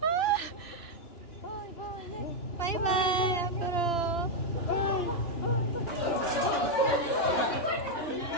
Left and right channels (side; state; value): right; late; 2.9 ms